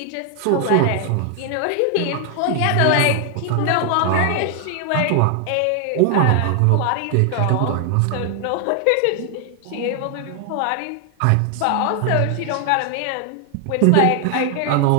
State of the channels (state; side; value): different; both; correlation 0.00